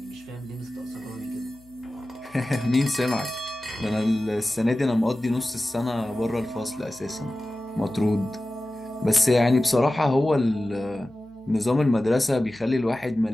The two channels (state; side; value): noise; left; hum, 28 dB below the sound